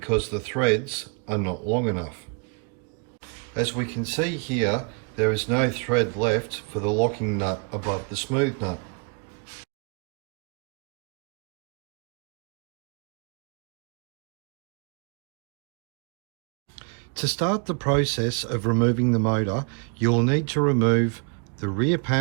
the threads are not long enough. As we can see here, there is no thread left for the locking nut above the smooth nut. To start the process of removing the motor, you'll need to remove the rear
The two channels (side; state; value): left; quieter; 35.7 dB